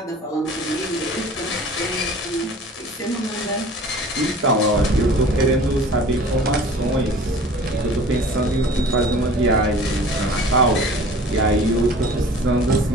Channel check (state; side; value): normal; both; correlation 0.45